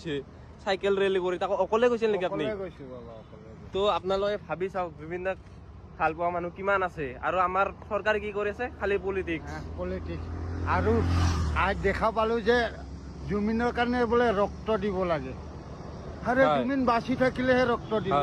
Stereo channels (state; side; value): identical; both; correlation 1.00